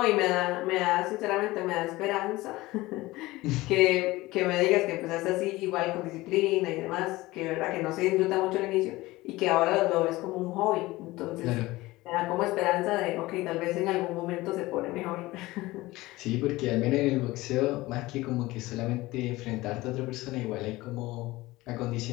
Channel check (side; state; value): right; quieter; 19.4 dB